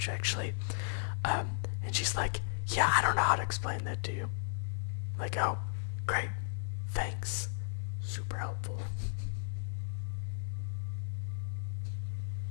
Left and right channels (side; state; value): right; silent; digital silence